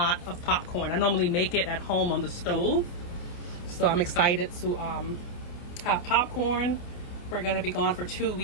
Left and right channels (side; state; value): right; late; 28 ms